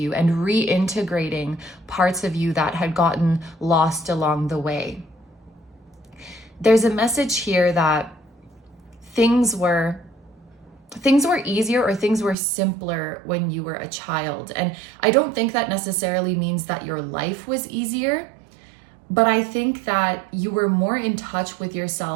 and reintegrating parts of you that had gotten lost along the way. There's a message here that things were easier or things were simpler when you were a child. And I don't think that necessarily means that your life was easier, but I think that you were more in touch with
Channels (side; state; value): left; drops out; at 12.4 s